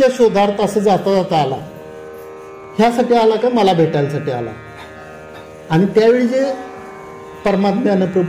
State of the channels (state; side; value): identical; both; correlation 1.00